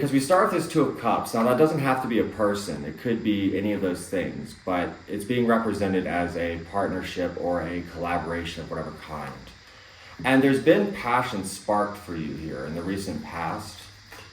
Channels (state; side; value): identical; both; correlation 1.00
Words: we start with this Two of Cups. Now, that doesn't have to be a person. It could be any of those things, but it's being represented as a partnership or a collaboration of whatever kind. And there's been passion sparked for you here in the recent past,